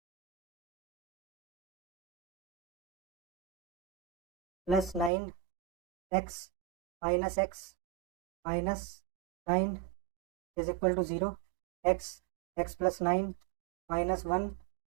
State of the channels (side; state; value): left; drops out; at 5.1 s